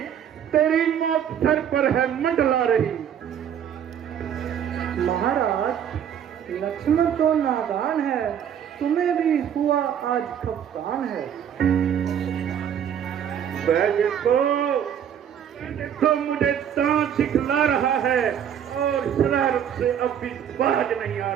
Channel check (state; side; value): quieter; left; 9.0 dB